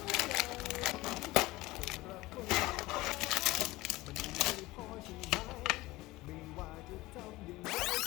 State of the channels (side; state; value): right; quieter; 18.9 dB